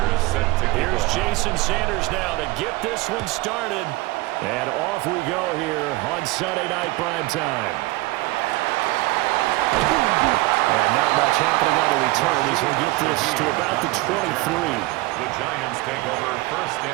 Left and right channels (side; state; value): left; quieter; 21.0 dB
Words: set to kick Here's off. Jason Sanders now to get this one started. And off we go here on Sunday Night Primetime. Not much happening on the return as he'll get this to about the 23. The Giants take over 1st